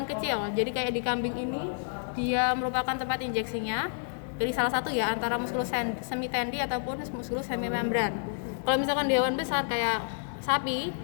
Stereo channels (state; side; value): silent; right; 58 dB below the other